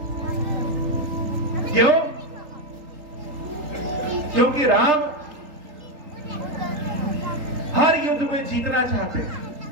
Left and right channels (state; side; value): late; left; 3.8 ms